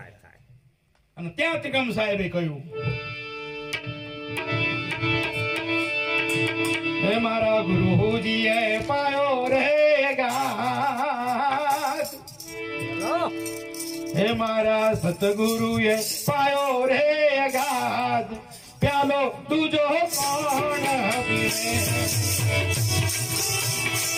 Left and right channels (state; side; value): identical; both; correlation 1.00